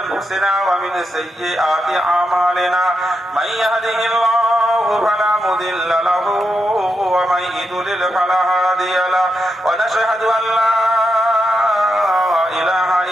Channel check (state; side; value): normal; both; correlation 0.85